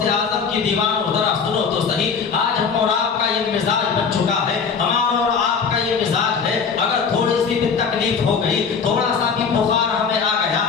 اعظم کی دیوانوں ذرا سنو تو صحیح، آج ہم اور آپ کا یہ مزاج بن چکا ہے، ہمارا اور آپ کا یہ مزاج ہے، اگر تھوڑی سی بھی تکلیف ہو گئی، تھوڑا سا بھی بخار ہمیں آ گیا،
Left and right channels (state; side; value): quieter; right; 5.9 dB